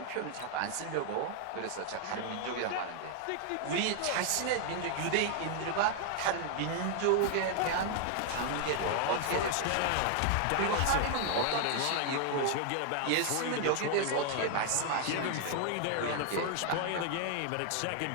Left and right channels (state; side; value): different; both; correlation 0.00